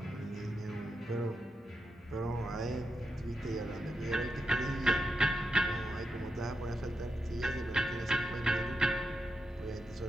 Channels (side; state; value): both; normal; correlation 0.84